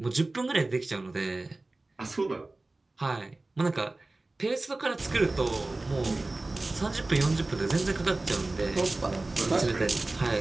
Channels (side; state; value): left; quieter; 3.0 dB